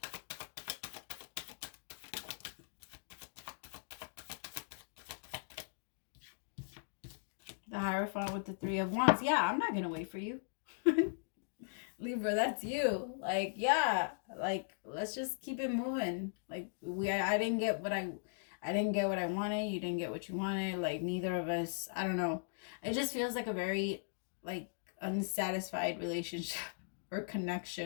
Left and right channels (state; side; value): silent; right; digital silence